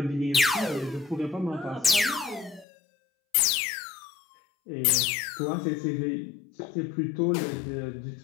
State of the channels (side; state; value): right; drops out; at 2.7 s